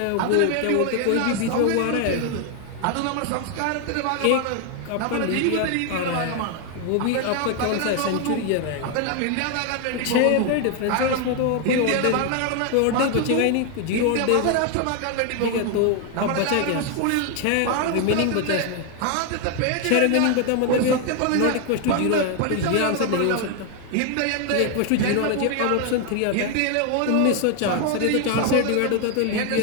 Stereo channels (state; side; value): different; both; correlation 0.01